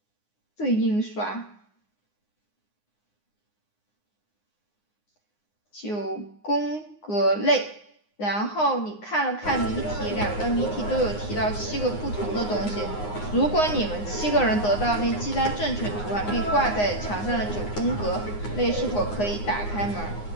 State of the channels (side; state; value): right; late; 9.7 ms